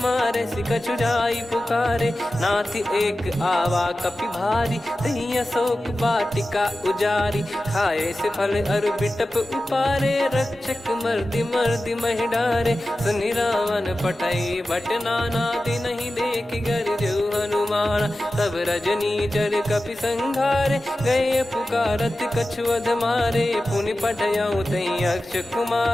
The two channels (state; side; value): normal; both; correlation 0.94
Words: सि कछु जाई पुकारे। नाथ एक आवा कपि भारी, तही अशोक वाटिका उजारी। खाए से फल अरु बिटप उपारे, रक्षक मर्दि मर्दि महि डारे। सुनि रावण पठई भट नाना, तिनहि देख गर जो हनुमाना। तब रजनी चर कपि संघारे, गए पुकारत कछु अध मारे। पुनि पठयऊ तई अक्ष